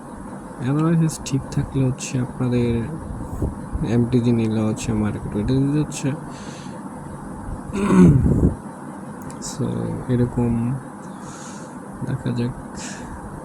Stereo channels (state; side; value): identical; both; correlation 1.00